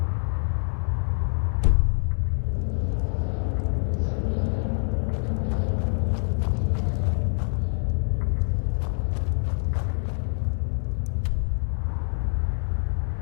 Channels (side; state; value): right; silent; 61 dB below the other